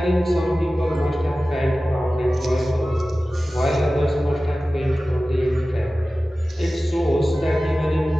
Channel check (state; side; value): normal; both; correlation 0.96